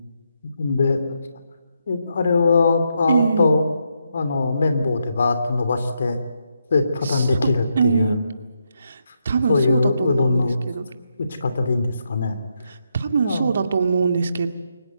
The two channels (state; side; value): inverted; both; correlation -0.80